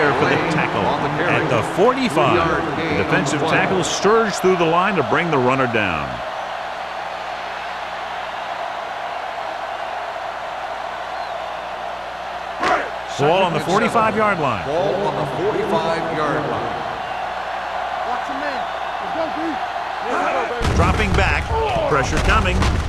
for the tackle at the 45. The defensive tackle surged through the line to bring the runner down. Ball on the 45-yard line. Ball on the 45-yard line. Watch your man. Let's go, B. Dropping back. Pressure coming.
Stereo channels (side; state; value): both; identical; correlation 1.00